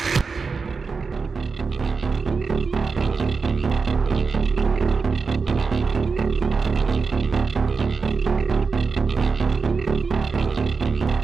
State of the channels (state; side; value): quieter; left; 4.8 dB